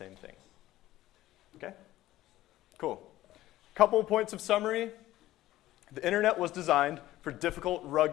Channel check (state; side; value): quieter; right; 15.4 dB